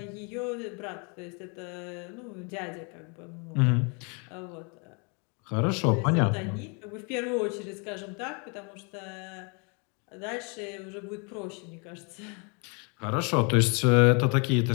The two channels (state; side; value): quieter; right; 34.4 dB